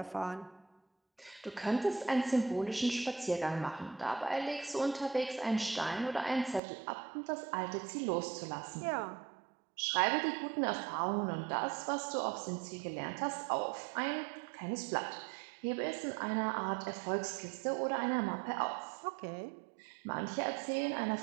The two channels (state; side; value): drops out; left; at 6.6 s